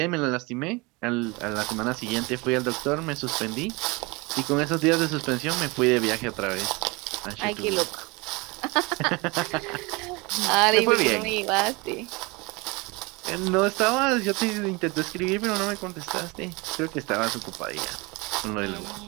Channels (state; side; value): quieter; left; 25.9 dB